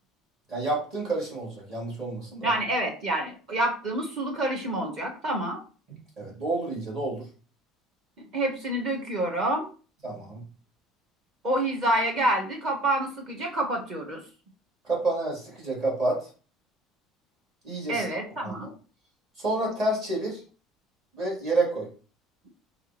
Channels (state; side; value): normal; both; correlation 0.49